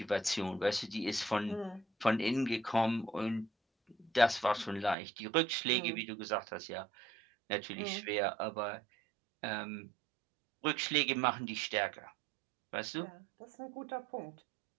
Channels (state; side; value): drops out; left; at 5.0 s